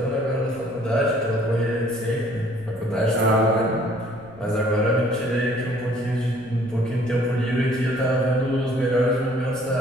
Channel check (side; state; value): right; noise; rumble, 23 dB below the sound